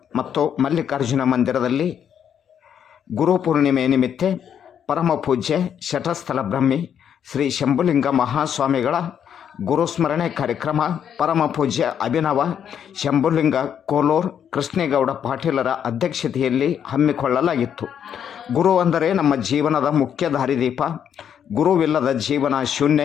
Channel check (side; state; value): right; quieter; 8.7 dB